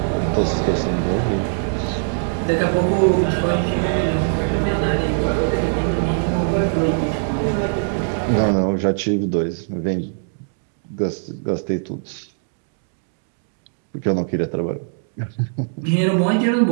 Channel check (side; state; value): left; silent; digital silence